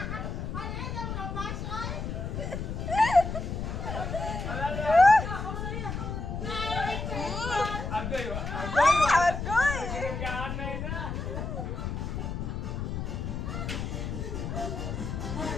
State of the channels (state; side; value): noise; left; rumble, 4 dB below the sound